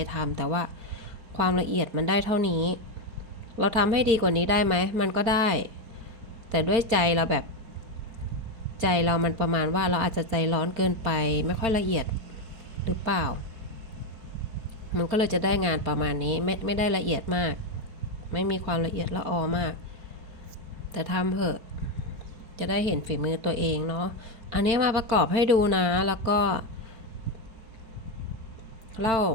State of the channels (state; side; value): late; left; 4.7 ms